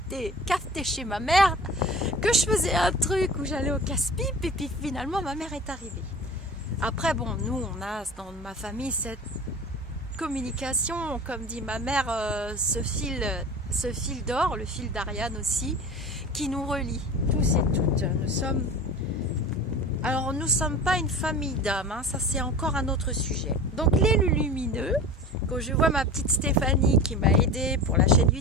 cafeté chez ma mère, que je faisais un truc où j'allais au casse-pipe et puis finalement ma mère est arrivée. Après, bon, nous, on a dans ma famille cette communication, comme dit ma mère, ce fil d'or, le fil d'Ariane aussi, qui nous relie, tous et toutes. Alors, nous ne sommes pas une famille d'âmes, hein, ça c'est encore un autre sujet. Donc, les lumineux, quand je vois ma petite Stéphanie qui m'a aidée pour la chaîne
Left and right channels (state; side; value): normal; both; correlation 0.36